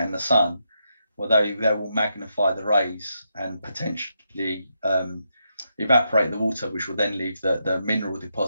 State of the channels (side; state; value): both; inverted; correlation -0.82